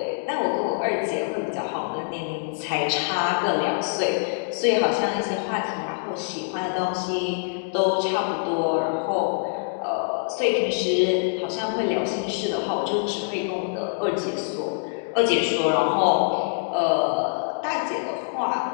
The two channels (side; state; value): right; silent; digital silence